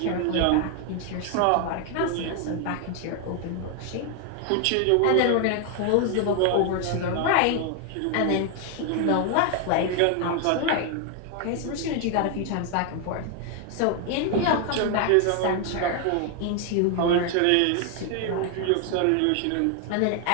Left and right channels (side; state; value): both; different; correlation 0.00